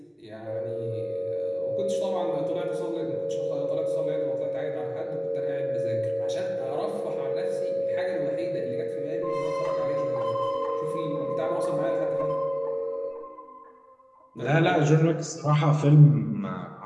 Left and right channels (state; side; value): identical; both; correlation 1.00